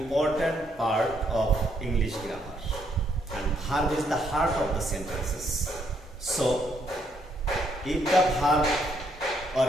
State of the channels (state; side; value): normal; both; correlation 0.72